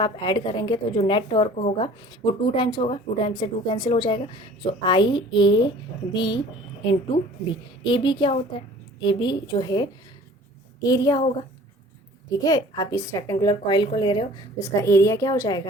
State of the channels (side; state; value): both; normal; correlation 0.48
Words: ऐड करेंगे तो जो नेट टॉर्क होगा वो 2 टाइम्स होगा, 2 टाइम्स से 2 कैंसिल हो जाएगा। So I A B into B. A B क्या होता है, ए बी जो है एरिया होगा, ठीक है। आप इस रेक्टेंगुलर कॉइल को ले रहे हो तो इसका एरिया क्या हो